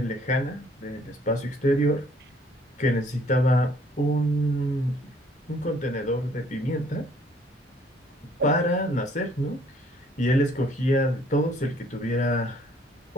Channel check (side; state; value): both; normal; correlation 0.61